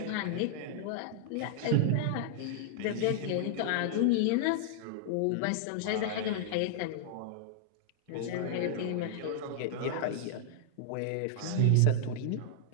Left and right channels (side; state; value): both; different; correlation -0.01